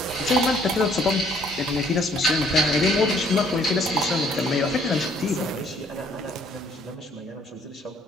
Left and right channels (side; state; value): both; normal; correlation 0.63